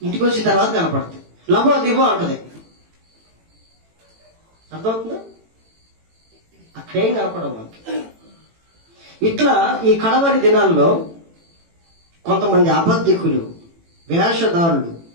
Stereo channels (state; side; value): late; left; 18 ms